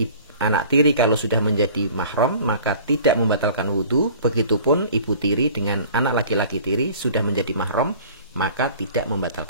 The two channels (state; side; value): inverted; both; correlation -0.46